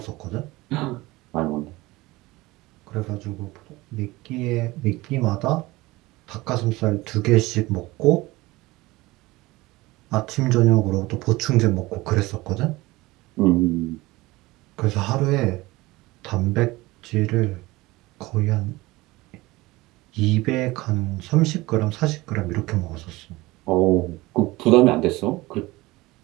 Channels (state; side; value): quieter; left; 20.4 dB